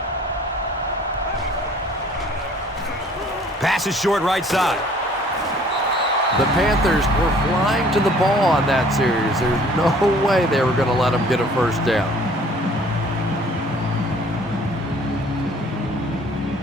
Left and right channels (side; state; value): both; normal; correlation 0.55